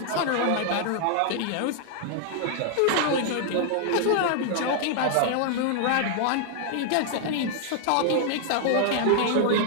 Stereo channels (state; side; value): different; both; correlation 0.00